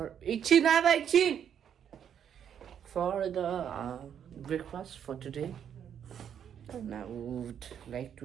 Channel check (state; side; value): quieter; left; 8.8 dB